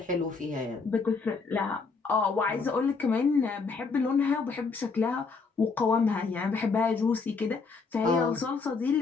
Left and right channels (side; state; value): right; quieter; 4.6 dB